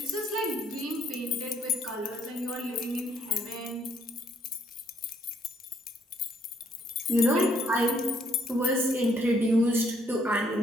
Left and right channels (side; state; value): both; normal; correlation 0.68